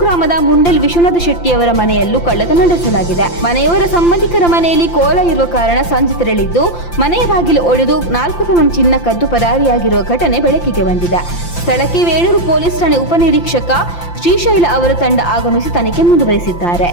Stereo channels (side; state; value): right; late; 5.8 ms